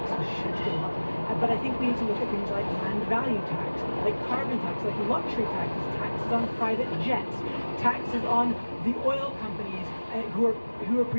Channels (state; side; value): inverted; both; correlation -1.00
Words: should go up, but I think we need to look at things like land value tax, like carbon tax, like luxury taxes, taxes on private jets, taxes on the oil companies who are